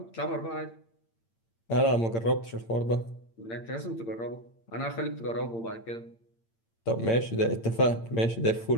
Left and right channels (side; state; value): right; late; 8.8 ms